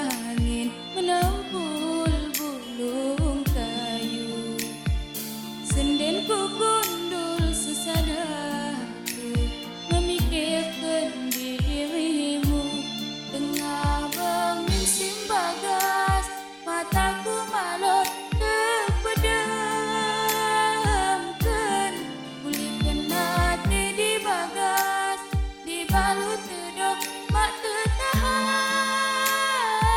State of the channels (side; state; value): both; identical; correlation 1.00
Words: menempul bulung kayu. Senden ku gundul sesadaku memikirkan dirimu. Tengah berminsim bagas, mataku malut terpedamkan. Kulit kena di bagas, dibalut tedok mak